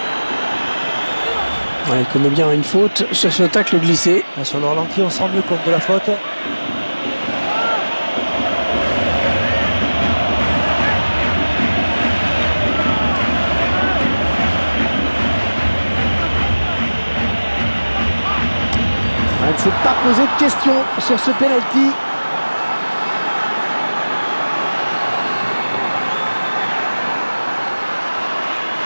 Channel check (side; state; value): both; inverted; correlation -1.00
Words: Ouais, il connaît bien une faute sur ce tacle glissé. Sur le ralenti, on se rend mieux compte de la faute. Il ne s'est pas posé de questions sur ce pénalty.